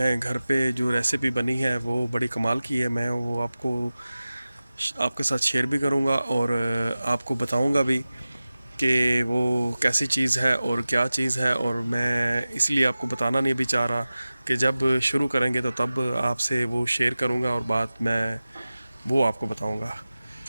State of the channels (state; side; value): inverted; both; correlation -0.96